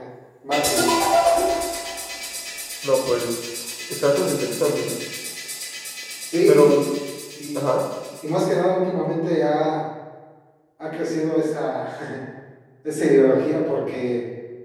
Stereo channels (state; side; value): identical; both; correlation 1.00